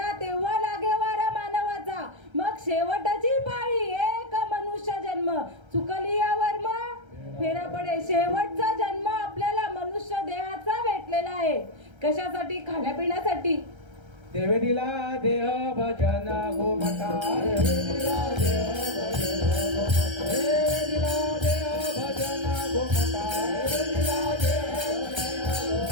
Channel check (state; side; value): late; left; 1.3 ms